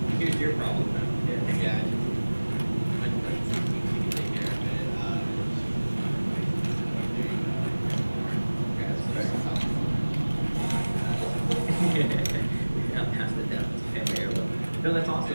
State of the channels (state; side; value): inverted; both; correlation -1.00